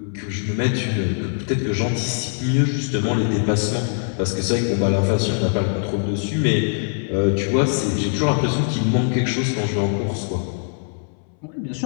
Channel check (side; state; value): right; silent; 64 dB below the other